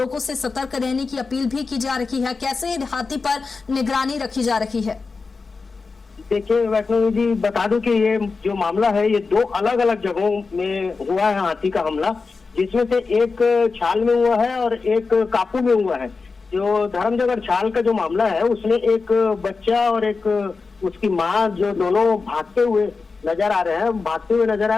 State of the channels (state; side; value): quieter; right; 4.4 dB